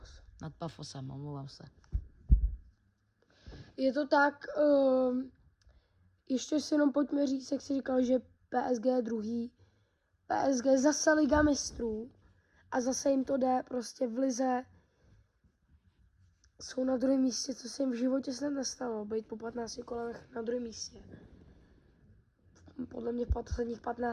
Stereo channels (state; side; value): identical; both; correlation 1.00